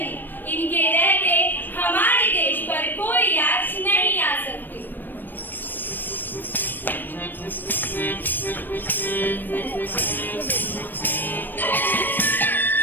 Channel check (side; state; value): right; late; 0.092 ms